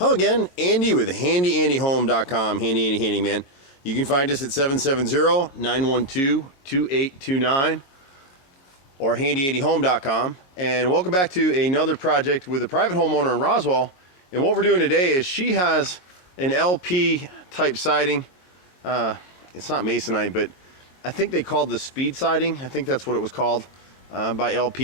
again, Andy with HandyANDYHome.com, Handy Andy Handyman. You can find us at 770-912-2829 or HandyANDYHome.com. And welcome back to another project with a private homeowner in Roswell. And what we're doing today is she has an LP type siding. It's not masonite, but I think they called the speed siding. I think that's what it was called by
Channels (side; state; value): right; late; 22 ms